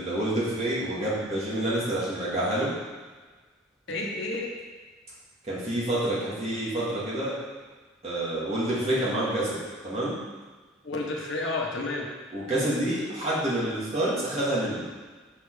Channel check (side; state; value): both; normal; correlation 0.45